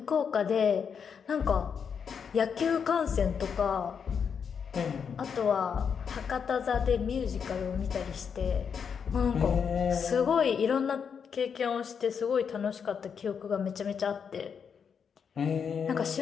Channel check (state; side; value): quieter; right; 6.8 dB